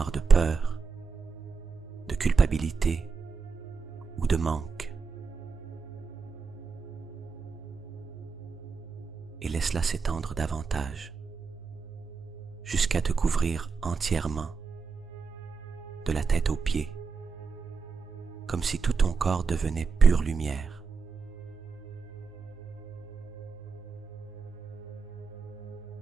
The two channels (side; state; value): left; quieter; 5.1 dB